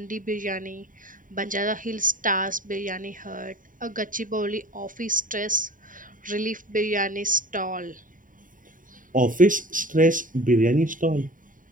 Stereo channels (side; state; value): left; late; 0.39 ms